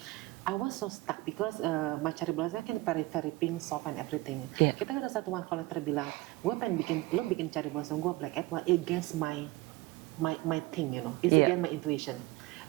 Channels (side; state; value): left; quieter; 20.7 dB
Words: I was so stuck because my cherry blossom kan very very pink, soft and everything. Yeah. Kita ada satu one collector bilang, gue pengen lo bikin cherry blossom gue black and white against my thing, it's Yeah. against my intuition.